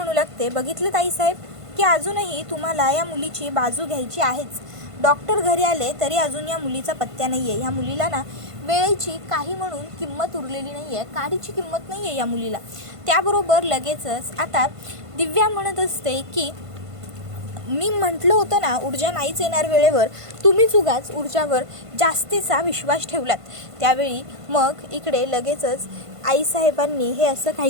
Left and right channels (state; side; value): late; left; 1.5 ms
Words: लागते बघितलं ताईसाहेब की अजूनही तुम्हाला या मुलीची बाजू घ्यायची आहेच. डॉक्टर घरी आले तरी अजून या मुलीचा पत्त्या नाही आहे. ह्या मुलीला ना वेळेची काही म्हणून किंमत उरलेली नाही आहे, काडीची किंमत नाही आहे या मुलीला. त्याबरोबर लगेचच आता दिव्या म्हणत असते की मी म्हटलं होतं ना ऊर्जा नाहीच येणार वेळेवर, तुम्हीच उगाच ऊर्जावर जास्तीचा विश्वास ठेवलात. त्यावेळी मग इकडे लगेचच आईसाहेबांनी हे असं